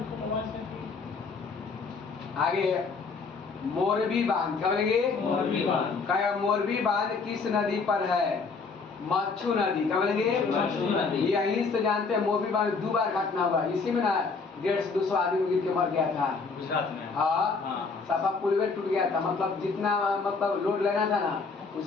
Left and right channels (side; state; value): right; quieter; 4.6 dB